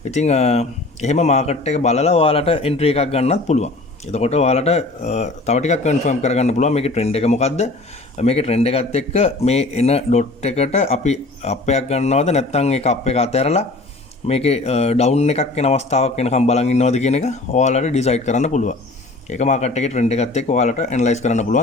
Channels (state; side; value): quieter; right; 3.0 dB